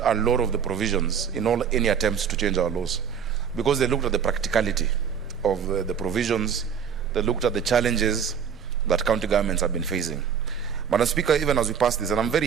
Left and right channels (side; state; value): left; quieter; 7.4 dB